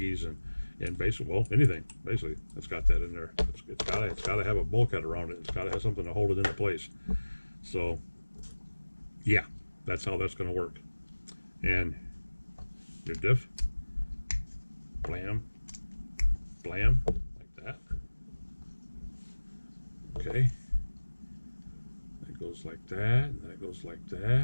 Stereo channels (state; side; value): inverted; both; correlation -1.00